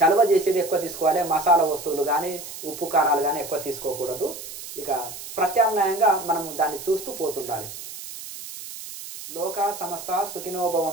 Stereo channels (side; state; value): right; noise; hiss, 11 dB below the sound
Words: చేసేది ఎక్కువ తీసుకోవాలి. మసాలా వస్తువులు కానీ ఉప్పు కారాలు కానీ ఎక్కువ తీసుకోకూడదు. ఇక ప్రత్యామ్నాయంగా మనం దాన్ని చూస్తూ పోతుండాలి. లోకా సమస్త సుఖినో